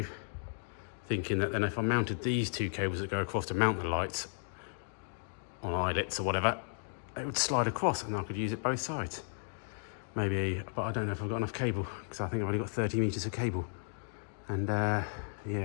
thinking that then if I mounted these 2 cables that go across to mount the lights on eyelets or whatever, it would slide across and I could use it both sides. Maybe, but I don't know if I've got enough cable, because I think I've only got 30 meters of cable. And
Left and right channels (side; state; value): right; silent; digital silence